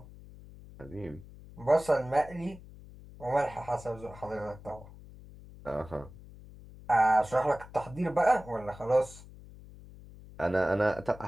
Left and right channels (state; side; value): noise; left; hum, 18 dB below the sound